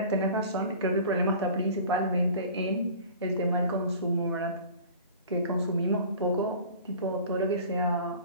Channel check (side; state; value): both; inverted; correlation -0.43